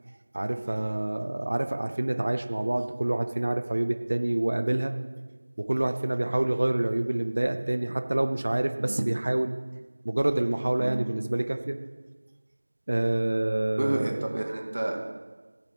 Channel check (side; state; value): both; inverted; correlation -1.00